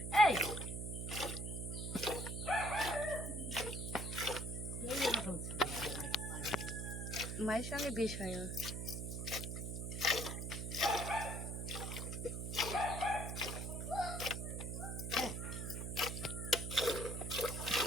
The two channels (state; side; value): noise; right; hum, 4 dB below the sound